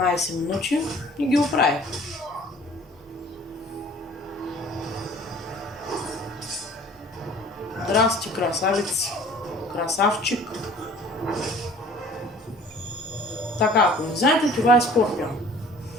минути и ги оправих. Здрасти, красавец. Красавчик. Така, ако не знаете, това е Скорпион.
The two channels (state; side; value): normal; both; correlation 0.50